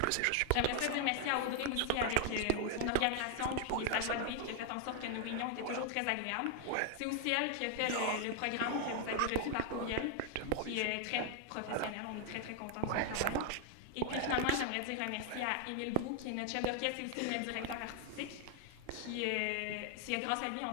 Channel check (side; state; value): both; different; correlation 0.00